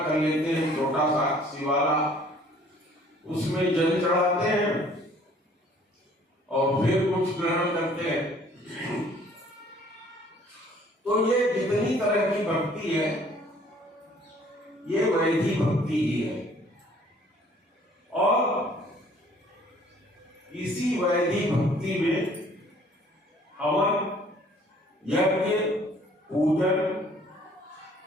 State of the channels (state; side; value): normal; both; correlation 0.56